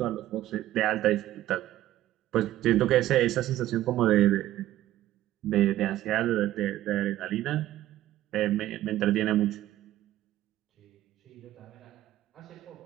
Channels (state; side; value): quieter; left; 14.2 dB